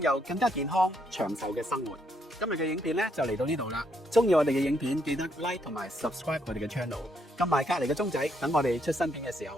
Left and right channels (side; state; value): both; normal; correlation 0.74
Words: 有更加健康長壽嘅生活。今日嘅影片咧就嚟到呢度啦，中意我哋嘅影片記得 like 同埋 subscribe 我哋嘅 channel， 撳埋隔籬嘅鐘仔，等我哋出新片嘅時候